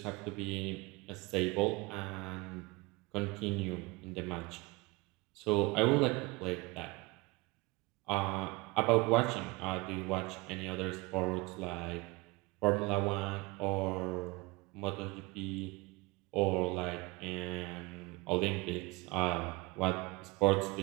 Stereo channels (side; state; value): left; quieter; 24.2 dB